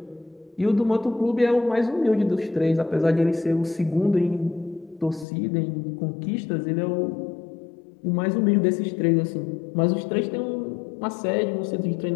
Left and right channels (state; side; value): drops out; right; at 5.2 s